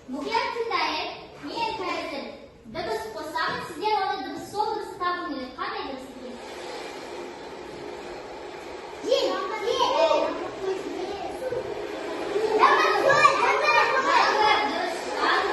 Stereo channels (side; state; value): both; identical; correlation 1.00